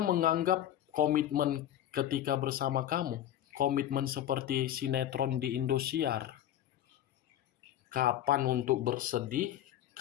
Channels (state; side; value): quieter; right; 11.7 dB